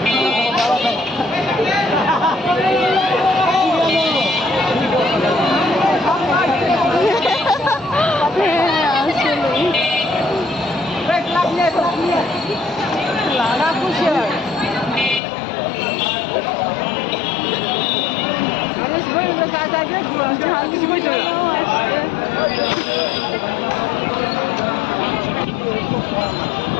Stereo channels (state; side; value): drops out; right; at 15.2 s